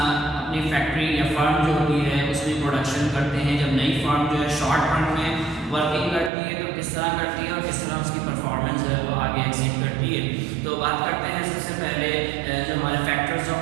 फैक्ट्री या फर्म जो होती है उसमें प्रोडक्शन करते हैं। जब नई फर्म जो है शॉर्ट रन में वर्किंग करती है तो किस तरह करती है और किस तरह उसकी परफॉर्मेंस है वो आगे एक्सीड करती है। तो बात करते हैं सबसे पहले जो हमारे फैक्टर्स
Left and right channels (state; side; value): drops out; left; at 6.3 s